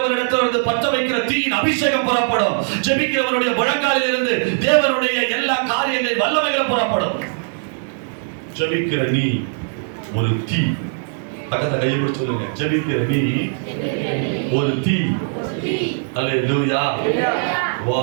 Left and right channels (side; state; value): left; silent; digital silence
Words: பற்ற வைக்கிற தீயின் அபிஷேகம் புறப்படும். ஜெபிக்கிறவனுடைய முழங்காலில் இருந்து தேவனுடைய எல்லா காரியங்களின் வல்லமைகள் புறப்படும். ஜெபிக்கிற நீ ஒரு தீ. பக்கத்துல கையை பிடிச்சு சொல்லுங்க, ஜெபிக்கிற நீ ஒரு தீ. அல்லேலூயா.